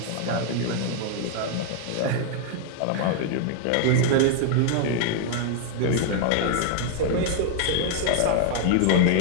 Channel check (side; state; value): both; different; correlation 0.00